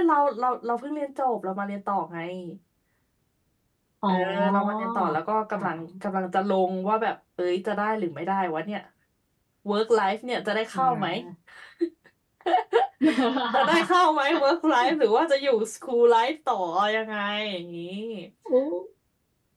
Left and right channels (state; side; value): identical; both; correlation 1.00